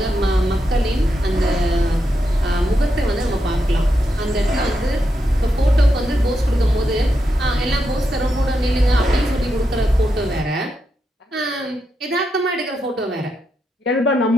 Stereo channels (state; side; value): normal; both; correlation 0.84